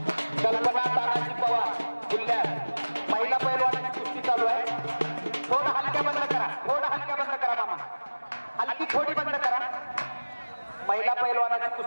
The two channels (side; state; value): both; inverted; correlation -1.00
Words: कल्पना तानाजी पवार जिल्ह्यात महिला पैलवानाची कुस्ती चालू आहे. थोडं हलक्या बंद करा, थोडं हलक्या बंद करा मामा, हलकी थोडी बंद करा. महिला पैलवानाची